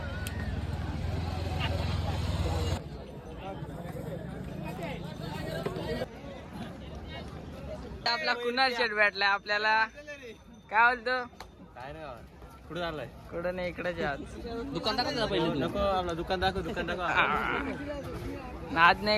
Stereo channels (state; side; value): identical; both; correlation 1.00